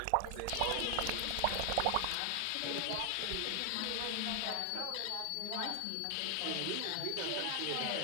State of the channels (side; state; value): both; different; correlation 0.00